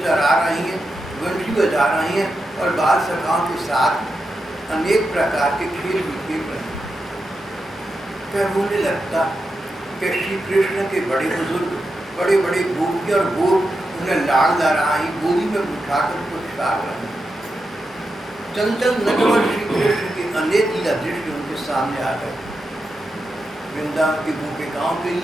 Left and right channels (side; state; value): both; normal; correlation 0.88